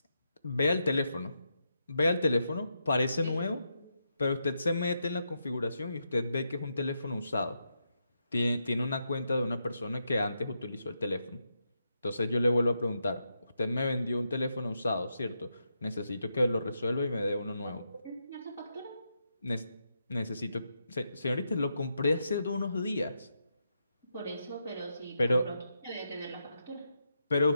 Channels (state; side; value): inverted; both; correlation -0.83